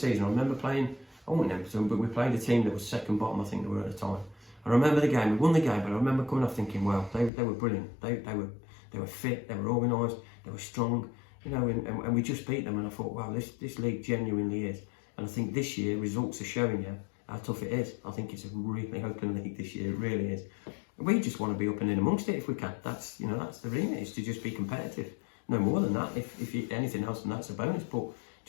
I remember playing, I won't name them, but we played a team that was second bottom, I think they were at the time. I remember the game, we won the game, but I remember coming off thinking, wow, they were brilliant. They were fit, they were organised, they were strong, and we just beat them, and I thought, wow, this league genuinely is. And I think this year, results are showing you how tough it is. I think it's a really open league this year, it really is. We just want to be up and in amongst it if we can. That's the remit, is to just be competitive. No more than that. If anything else, then that's a bonus, but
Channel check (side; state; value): right; drops out; at 7.3 s